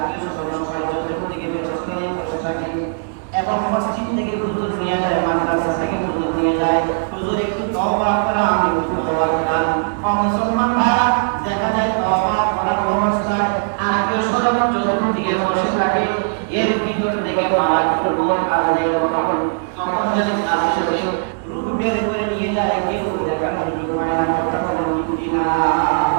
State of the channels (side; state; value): left; silent; digital silence